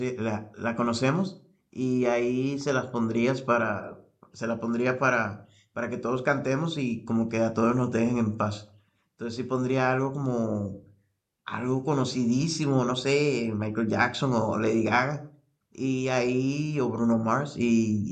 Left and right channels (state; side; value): identical; both; correlation 1.00